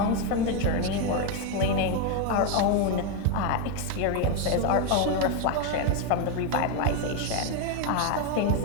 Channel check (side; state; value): both; different; correlation 0.02